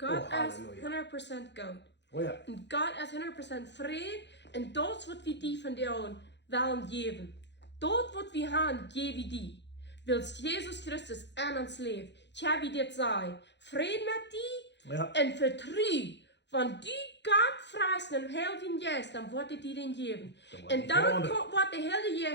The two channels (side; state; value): right; late; 0.51 ms